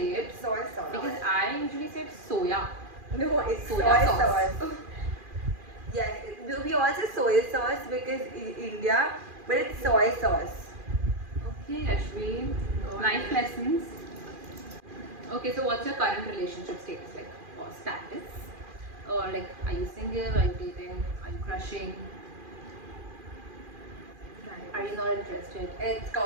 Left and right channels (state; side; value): late; left; 2.4 ms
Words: it. Soy sauce. Because I usually say soya. No, it's soy Soya sauce. sauce. Yes, we all say soy sauce because in India, but it's soy sauce. Okay, Ashwin. Life lessons. Okay, so what's your current relationship status like? Or status? Or like, are you single? Are you dating? Are you crushing? Are you not interested? It's